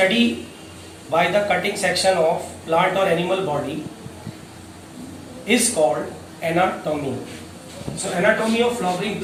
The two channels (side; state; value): both; identical; correlation 1.00